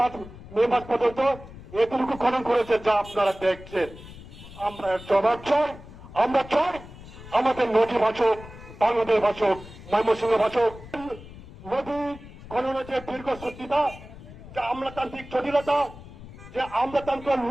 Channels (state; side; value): noise; left; rumble, 16 dB below the sound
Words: মে মাস পর্যন্ত এতটুকু খনন করেছে যা আপনারা দেখছেন। আমরা এর জবাব চাই। আমরা চাই আমাদের নদী বাঁচক, বাংলাদেশ বাঁচক, ময়মনসিংহ বাঁচক। নদী খননের যে দীর্ঘসূত্রিতা, যে আমলাতান্ত্রিক জটিলতা, যে আমলাতন্ত্র